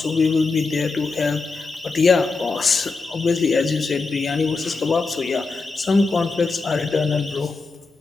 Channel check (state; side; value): quieter; right; 4.0 dB